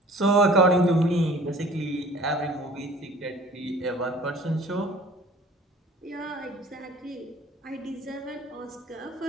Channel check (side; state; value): both; normal; correlation 0.49